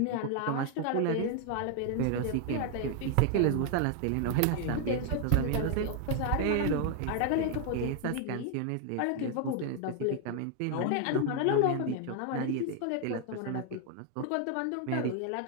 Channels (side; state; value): both; different; correlation 0.00